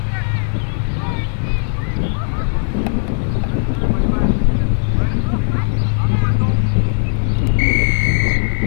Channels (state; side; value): silent; right; digital silence